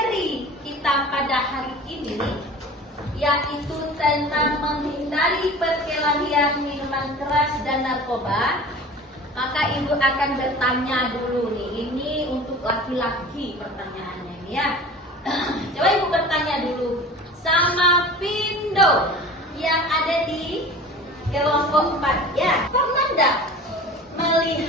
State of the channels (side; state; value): both; normal; correlation 0.39